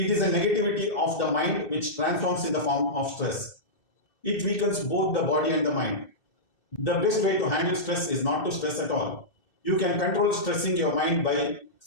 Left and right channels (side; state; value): right; late; 2.6 ms